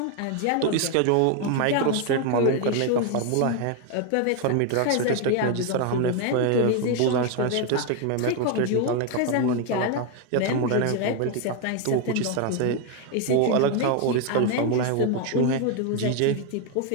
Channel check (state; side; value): different; both; correlation 0.01